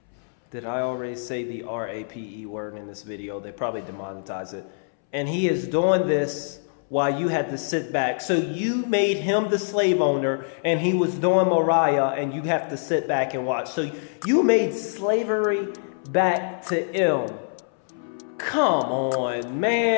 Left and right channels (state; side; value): silent; right; 62 dB below the other